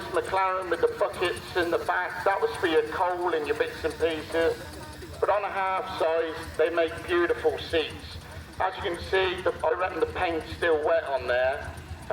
McLaren with the buckets in the back. That was for your coal and your bits and pieces. But on a half-size, they make beautiful seats. As you can see, I reckon the paint's still wet on there.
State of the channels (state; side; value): identical; both; correlation 1.00